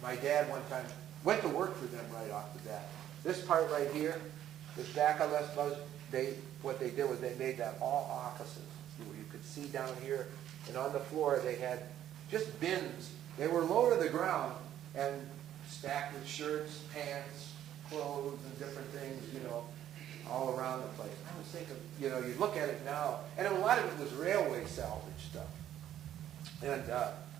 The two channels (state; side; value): quieter; left; 11.4 dB